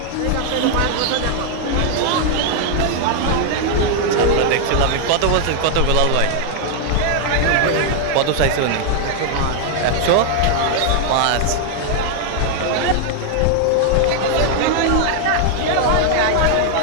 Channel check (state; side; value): different; both; correlation 0.00